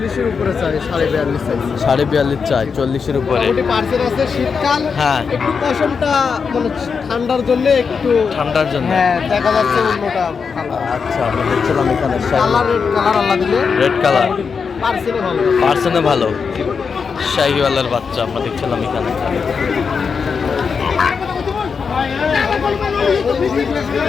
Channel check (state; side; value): quieter; right; 5.7 dB